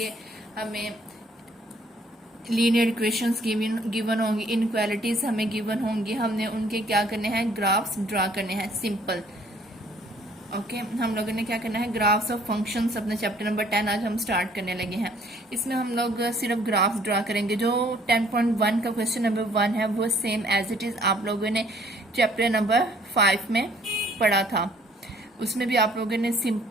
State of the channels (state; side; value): normal; both; correlation 0.60